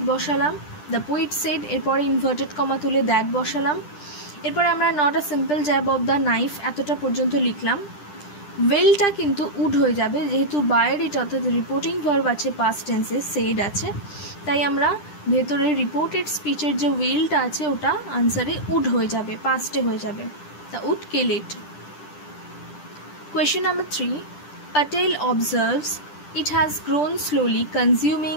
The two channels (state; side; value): late; right; 10 ms